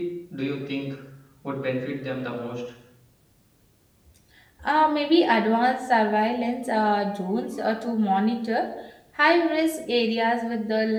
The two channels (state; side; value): identical; both; correlation 1.00